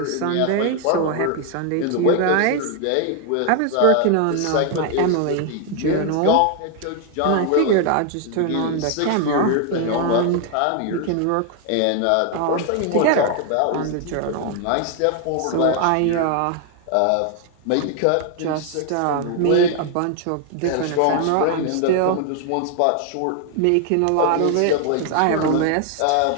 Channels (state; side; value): different; both; correlation 0.00